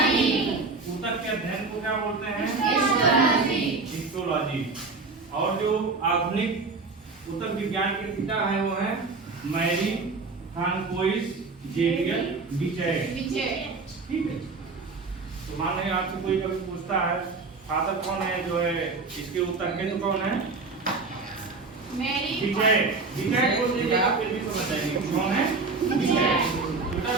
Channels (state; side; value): quieter; left; 4.0 dB